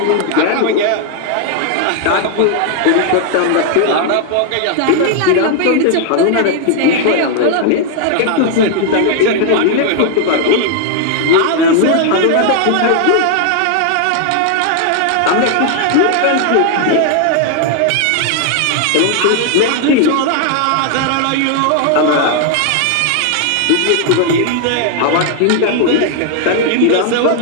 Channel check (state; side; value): different; both; correlation 0.00